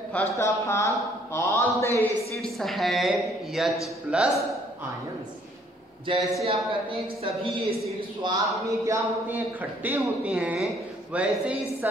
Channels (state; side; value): normal; both; correlation 0.63